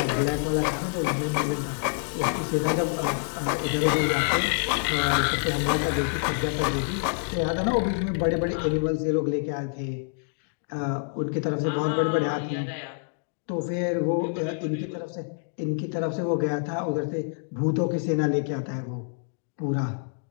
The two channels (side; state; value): right; silent; digital silence